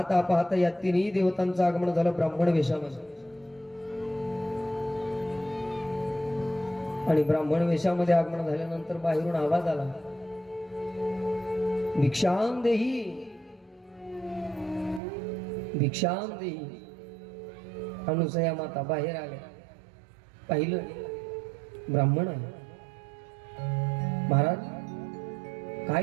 पाहता या तिन्ही देवतांचं आगमन झालं ब्राह्मण वेशामध्ये. आणि ब्राह्मण वेशामध्ये आगमन झाल्यानंतर बाहेरून आवाज आला, भिक्षाम देही, भिक्षाम देही. अनुसया माता बाहेर आल्या, पाहिलं ब्राह्मण आहे. महाराज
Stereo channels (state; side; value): drops out; left; at 15.0 s